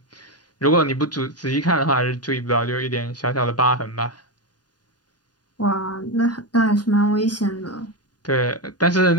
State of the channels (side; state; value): right; late; 0.70 ms